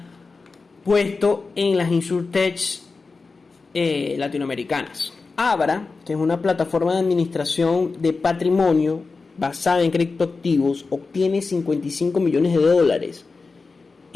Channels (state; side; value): quieter; right; 4.2 dB